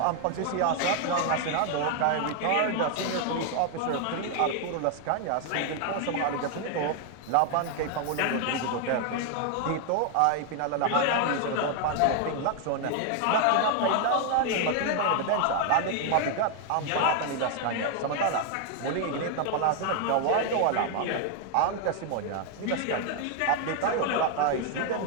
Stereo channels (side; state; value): both; different; correlation 0.00